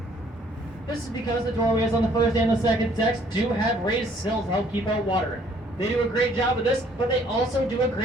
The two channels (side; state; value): both; normal; correlation 0.61